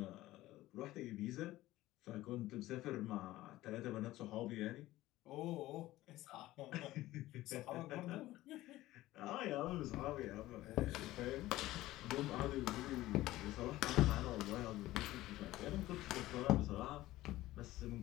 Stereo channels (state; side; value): quieter; right; 16.5 dB